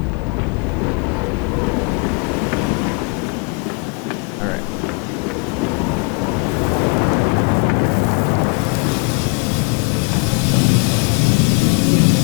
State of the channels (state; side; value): quieter; right; 30.9 dB